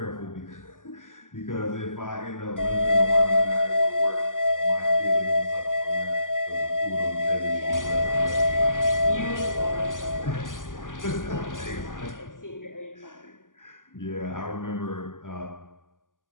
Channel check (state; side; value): late; right; 0.88 ms